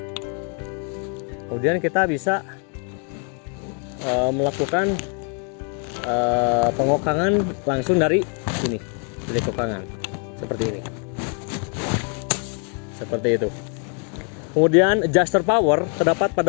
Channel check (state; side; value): quieter; right; 39.6 dB